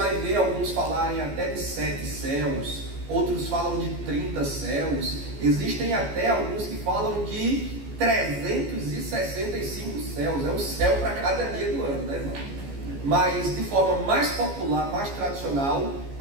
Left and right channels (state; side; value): late; left; 14 ms